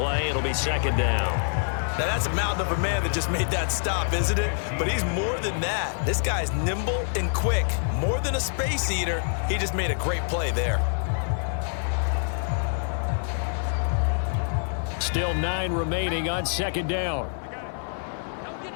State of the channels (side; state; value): right; silent; digital silence